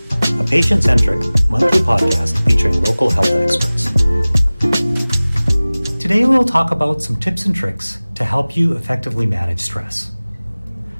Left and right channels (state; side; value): inverted; both; correlation -0.99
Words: a patient-centric monthly podcast featuring local health experts. Today we'll talk about some tips and tricks to help you effectively manage stress.